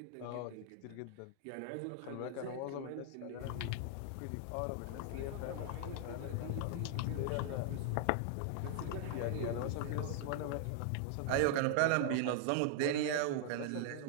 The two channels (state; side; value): different; both; correlation -0.01